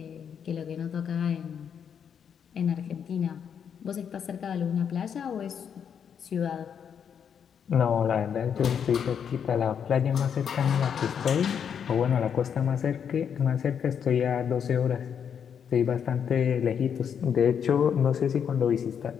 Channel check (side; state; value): right; quieter; 7.7 dB